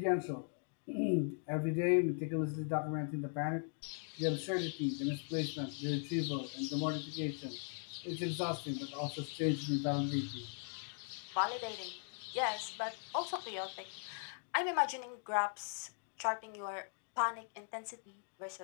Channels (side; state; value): right; silent; 52 dB below the other